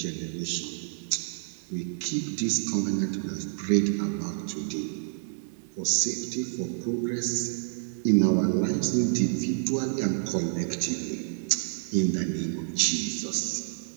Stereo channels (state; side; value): silent; left; digital silence